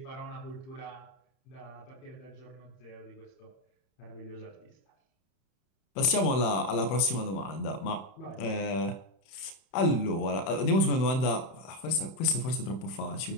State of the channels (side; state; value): right; late; 31 ms